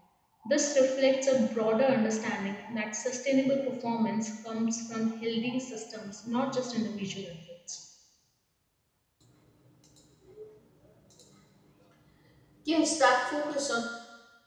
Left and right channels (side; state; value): both; identical; correlation 1.00